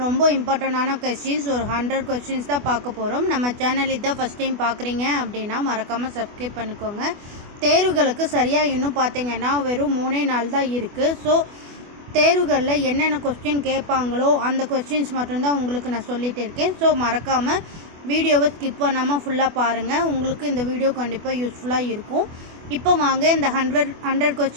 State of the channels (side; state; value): left; late; 24 ms